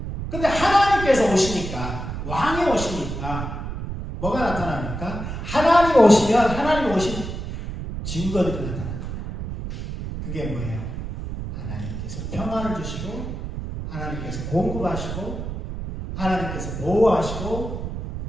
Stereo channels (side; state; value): right; noise; rumble, 6 dB below the sound